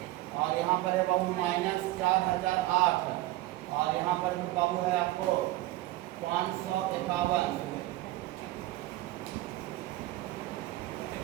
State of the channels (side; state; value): left; quieter; 17.5 dB